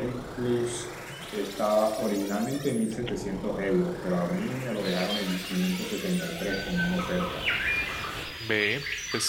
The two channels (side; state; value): both; identical; correlation 1.00